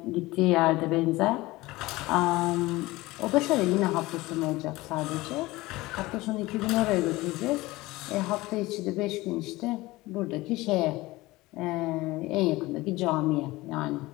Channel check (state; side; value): quieter; right; 19.9 dB